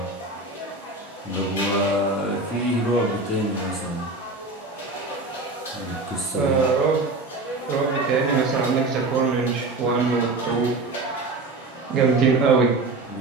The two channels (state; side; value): quieter; left; 3.2 dB